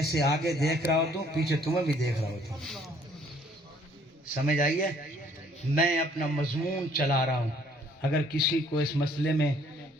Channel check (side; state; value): both; normal; correlation 0.61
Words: آگے دیکھ رہا ہوتا ہوں پیچھے تمہیں بھی دیکھ رہا ہوتا ہوں، سمجھ آئیے؟ میں اپنا مضمون چلا رہا ہوں، اگر کسی کو اس مسئلے میں